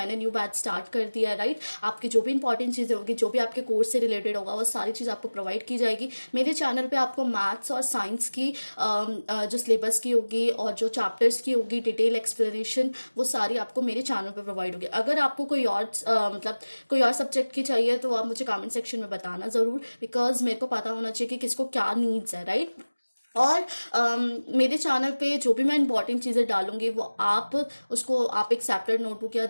न्यू बैच स्टार्ट कर दिया है। राइट, आपकी जो भी इंपॉर्टेंट चीज़ें होगी, जो भी आपके कोर्स से रिलेटेड होगा, वो सारी चीज़ आपको प्रोवाइड की जाएगी। मेरे चैनल पे आपको मैथ्स और साइंस की जो सिलेबस की होगी और जो चैप्टर्स की होगी, डिटेल एक्सप्लेनेशन, वो सारी आपको मेरे चैनल पे प्रोवाइड होगी। अगर आपको कोई और मतलब कोई और सब्जेक्ट की चाहिए तो आप मुझे कमेंट सेक्शन में बताना ज़रूर, बिकॉज मेरे को पता होना चाहिए कि किसको क्या नीड्स है। राइट, और मेरे चैनल पे जो भी मैं इंपॉर्टेंट चीज़ें डालूंगी, वो आप उसको आप एक सेपरेट नोटबुक या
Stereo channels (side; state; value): both; inverted; correlation -1.00